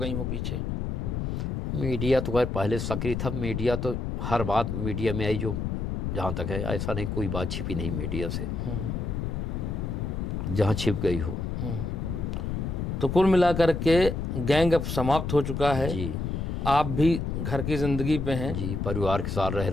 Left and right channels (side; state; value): left; noise; rumble, 2 dB below the sound